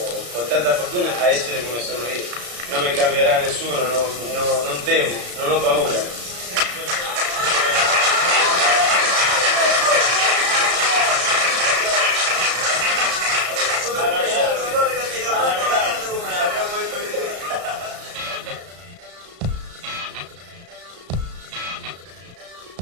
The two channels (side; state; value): left; late; 34 ms